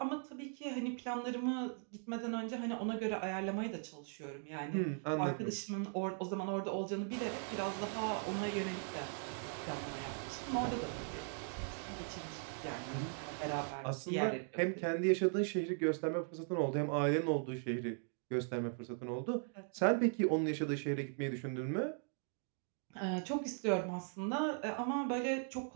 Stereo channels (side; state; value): left; silent; 52 dB below the other